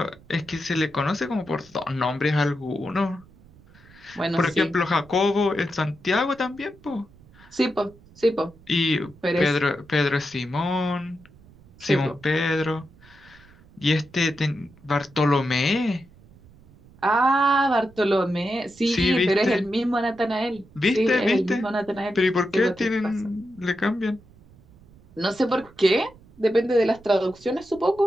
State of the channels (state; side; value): noise; right; rumble, 25 dB below the sound